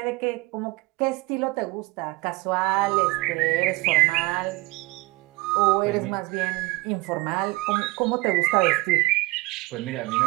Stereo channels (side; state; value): left; quieter; 22.0 dB